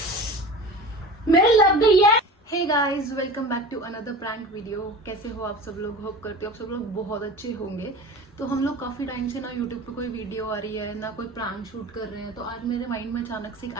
मेरे लग गई है। Hey guys, welcome back to another prank video. कैसे हो आप सब लोग? होप करते हो आप सब लोग बहुत अच्छे होंगे। तो हम लोग काफी टाइम से ना यूट्यूब पे कोई वीडियो आ रही है ना कोई प्रैंक शूट कर रहे हैं। तो आज मेरे माइंड में अचानक से एक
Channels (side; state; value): both; normal; correlation 0.36